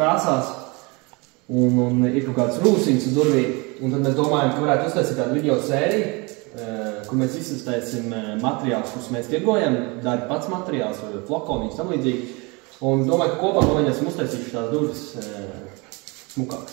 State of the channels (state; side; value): quieter; left; 27.9 dB